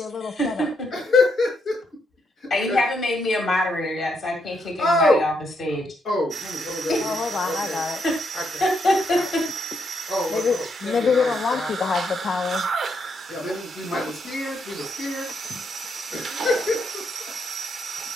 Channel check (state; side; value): normal; both; correlation 0.77